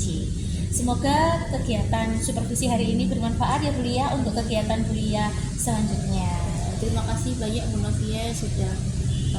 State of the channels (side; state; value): both; identical; correlation 1.00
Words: Semoga kegiatan supervisi hari ini bermanfaat ya Bu Lia untuk kegiatan Bu Lia selanjutnya. Terima kasih banyak Bu Novia sudah